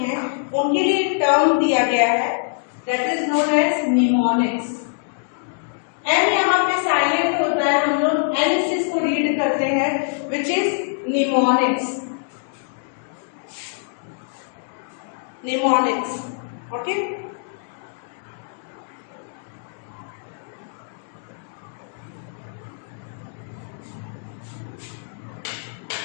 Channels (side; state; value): right; silent; digital silence